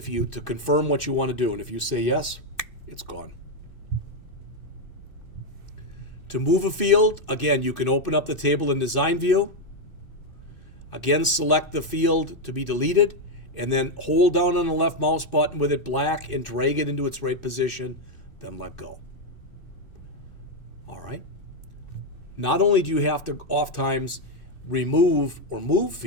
confirm what you want to do. And if you say yes, it's gone. To move a field, again, you can open up the table in design view. Again, select the field to be deleted, and then hold down on the left mouse button with it black and drag it into its right position, then let go. All right. Not only do you have to oftentimes remove or move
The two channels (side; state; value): right; late; 2.6 ms